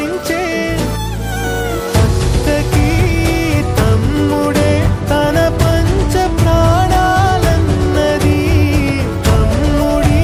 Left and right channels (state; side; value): identical; both; correlation 1.00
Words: అక్కకి తమ్ముడే తన పంచ ప్రాణాలన్నది తమ్ముడి